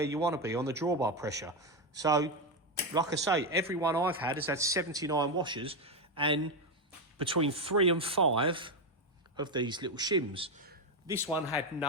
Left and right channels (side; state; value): both; normal; correlation 0.09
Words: you want to be on the drawbar pressure. So, like I say, every one I've had has had 79 washers and between 3 and 5 of these little shims. This one had